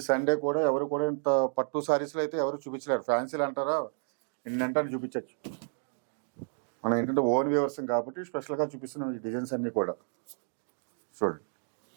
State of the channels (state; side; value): silent; left; digital silence